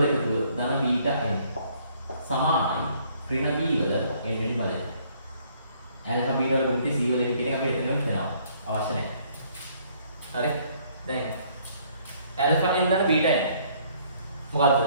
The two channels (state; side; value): inverted; both; correlation -0.63